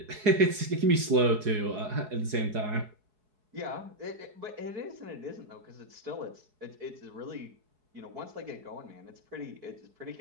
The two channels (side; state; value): left; late; 4.8 ms